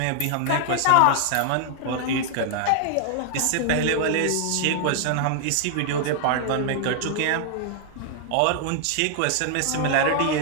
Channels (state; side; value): different; both; correlation 0.00